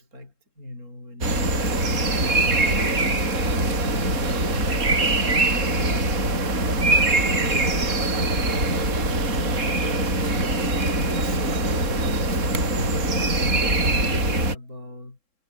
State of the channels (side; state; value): left; late; 3.7 ms